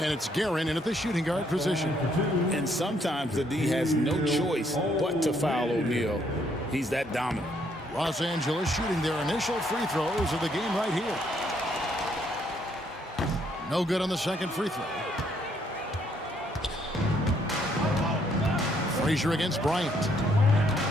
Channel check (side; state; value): both; normal; correlation 0.70